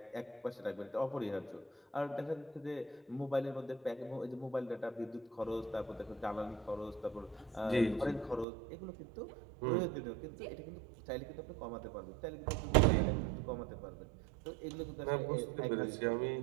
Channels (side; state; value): left; drops out; at 8.5 s